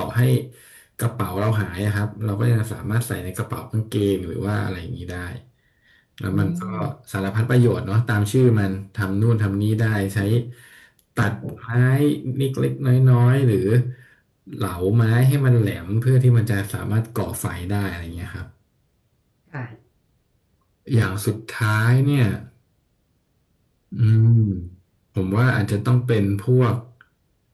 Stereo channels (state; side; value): identical; both; correlation 1.00